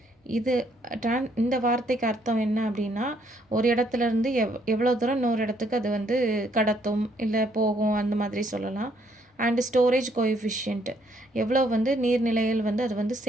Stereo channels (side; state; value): both; normal; correlation 0.69